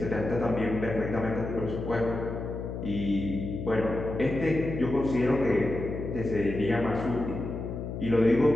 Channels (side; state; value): left; noise; hum, 6 dB below the sound